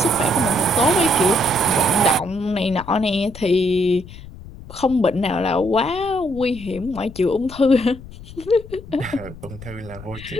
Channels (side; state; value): left; noise; rumble, 16 dB below the sound